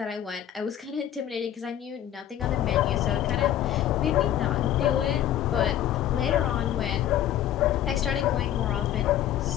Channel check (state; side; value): quieter; right; 11.5 dB